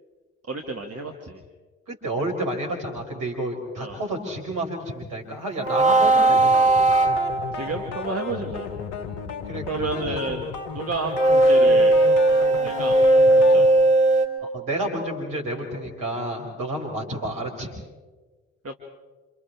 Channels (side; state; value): both; normal; correlation 0.55